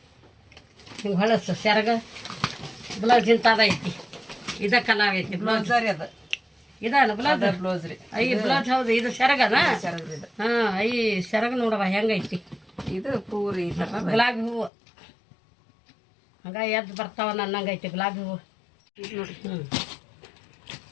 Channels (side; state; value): right; drops out; at 14.7 s